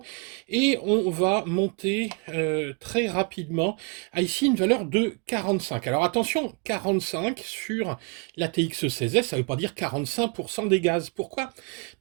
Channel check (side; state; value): left; quieter; 34.1 dB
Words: Et on va monter très rapidement à ici une valeur de 45. Alors attention, 45 sur la TX16S, ça ne veut pas dire 45% des gaz. Pourquoi?